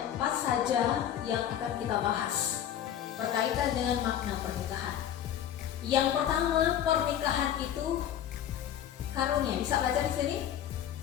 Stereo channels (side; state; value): right; quieter; 10.4 dB